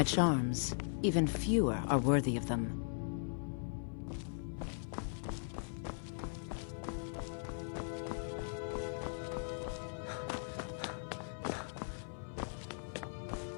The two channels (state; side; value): silent; right; 52 dB below the other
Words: stranger. charms. Even fewer are worthy of them.